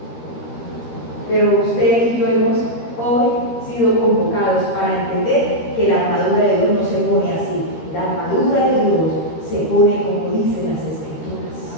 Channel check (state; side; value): late; right; 13 ms